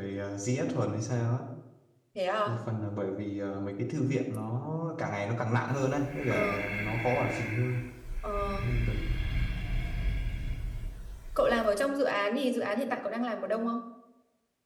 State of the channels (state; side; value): identical; both; correlation 1.00